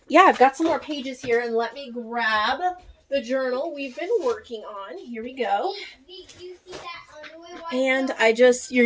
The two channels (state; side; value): identical; both; correlation 1.00